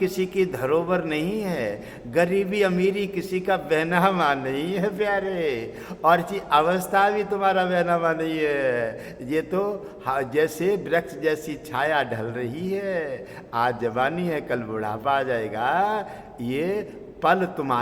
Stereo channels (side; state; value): both; identical; correlation 1.00